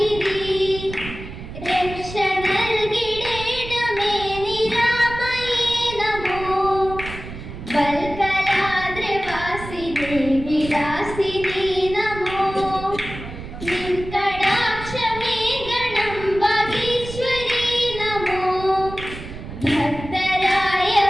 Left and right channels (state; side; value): noise; right; rumble, 11 dB below the sound